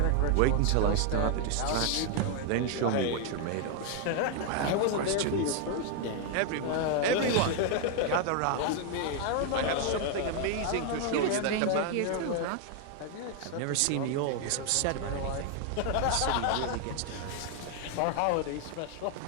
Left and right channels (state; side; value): different; both; correlation 0.00